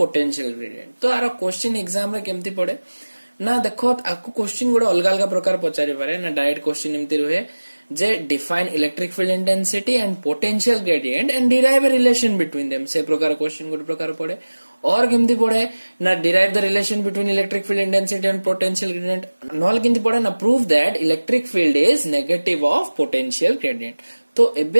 ग्रेडियंट। तो आर क्वेश्चन एग्जाम रे केमती पड़े ना देखो आपको क्वेश्चन गोटे अलग अलग प्रकार पचारि पारे ना डायरेक्ट क्वेश्चन एमती रुहे जे define electric field intensity and potential gradient and derive a relation between them से प्रकार क्वेश्चन गोटे प्रकार पड़े और केमती पड़े ना derive the relation between electric field intensity and potential gradient knoll केमती पड़े ना prove that electric field is negative of potential gradient. तो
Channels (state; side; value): inverted; both; correlation -1.00